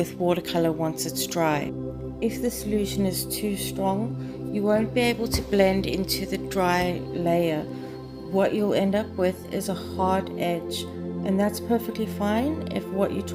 watercolor once it's dry. If the solution is too strong, you won't be able to blend into the dry layer. What you'll end up with is a hard edge, and that's perfectly fine if what you're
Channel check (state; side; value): identical; both; correlation 1.00